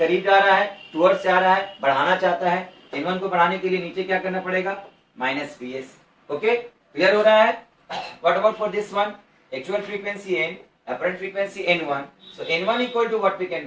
जा रहा है, टुवर्ड्स जा रहा है, बढ़ाना चाहता है, n1 को बढ़ाने के लिए नीचे क्या करना पड़ेगा, माइनस vs। ओके, क्लियर हो रहा है। What about for this one, actual frequency n, apparent frequency n1, so n1 equal to what we can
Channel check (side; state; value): both; identical; correlation 1.00